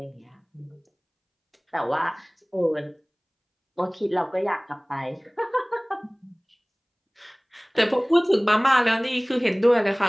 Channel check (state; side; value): identical; both; correlation 1.00